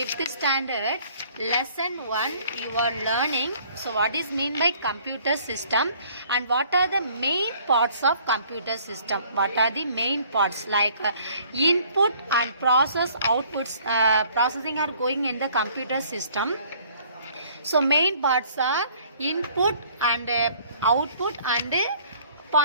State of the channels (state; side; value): inverted; both; correlation -0.57